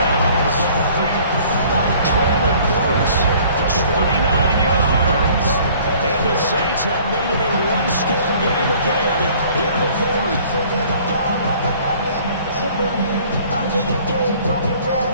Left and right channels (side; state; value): both; inverted; correlation -0.54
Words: Traylon Burks, 29 yards. And the Saints have made it a one-score game again here in the fourth.